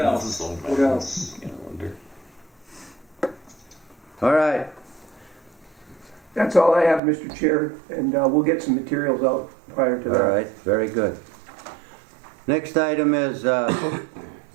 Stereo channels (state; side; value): drops out; left; at 7.0 s